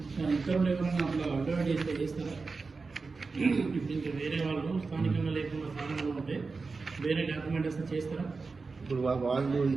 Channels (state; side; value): quieter; left; 4.2 dB